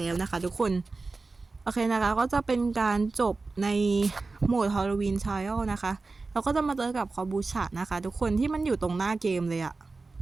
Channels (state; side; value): quieter; left; 3.8 dB